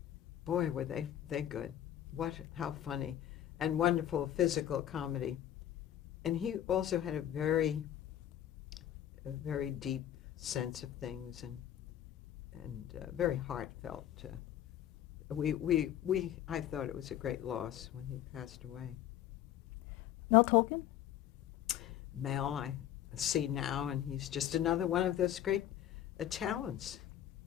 Boy, were they good. How funny and wonderful physical comedy. And he also had a very deep sense of things and very heartfelt. I thought it was a great loss when he passed away. Mel Tolkien? Mel, I see now, and he's just another one of those great talents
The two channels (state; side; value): quieter; right; 11.4 dB